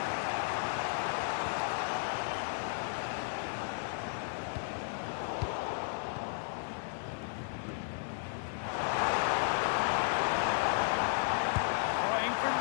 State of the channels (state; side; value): silent; right; 55 dB below the other